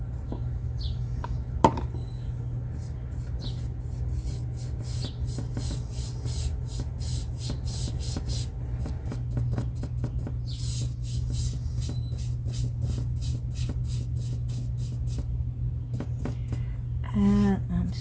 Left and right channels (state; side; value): identical; both; correlation 1.00